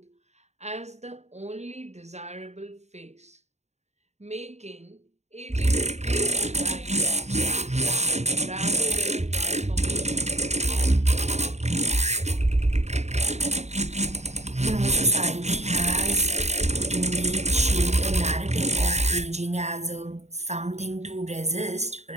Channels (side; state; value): left; late; 0.32 ms